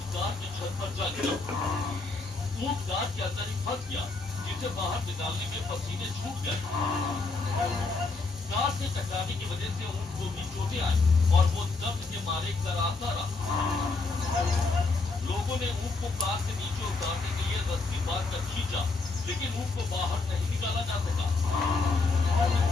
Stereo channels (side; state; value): right; quieter; 3.7 dB